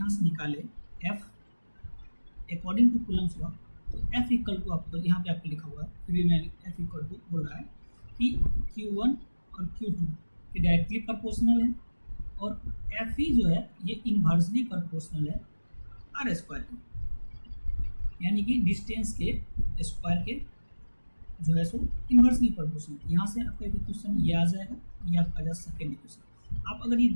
से निकालें F according to Coulomb's law, तो F इक्वल टू, आपको यहाँ पे आपको लिखा हुआ है, फिर भी मैं F इक्वल टू बोल रहा है कि Q1 और Q2 के डायरेक्टली प्रोपोर्शनल है, और Fe जो है ये इन्वर्सली प्रोपोर्शनल है आर स्क्वायर के, यानी कि डिस्टेंस के स्क्वायर के जो है सो इन्वर्सली प्रोपोर्शनल। यहाँ से आपका एक क्वेश्चन ये आ जाएगा, ये आपका आ जाएगा सेकेंड इक्वेशन। आप अगर ये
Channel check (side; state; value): both; inverted; correlation -1.00